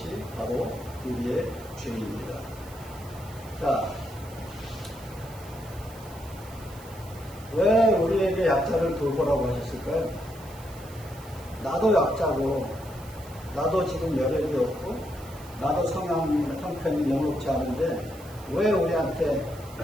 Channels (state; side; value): noise; right; hiss, 20 dB below the sound